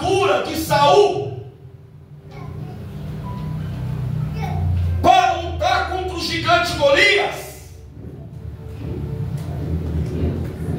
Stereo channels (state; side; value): identical; both; correlation 1.00